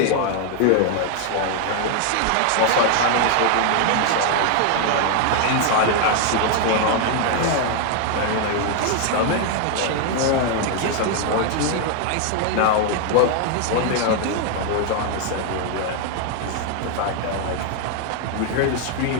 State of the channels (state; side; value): different; both; correlation 0.00